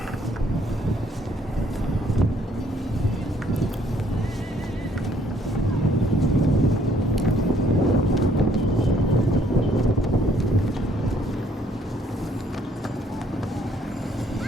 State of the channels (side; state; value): both; normal; correlation 0.65